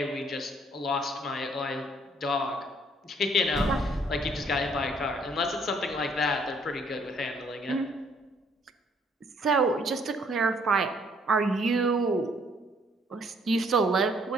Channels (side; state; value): both; normal; correlation 0.64